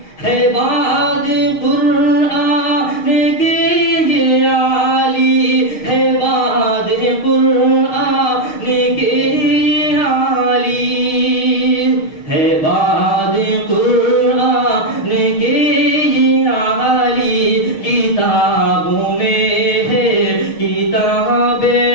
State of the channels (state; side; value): late; right; 6.4 ms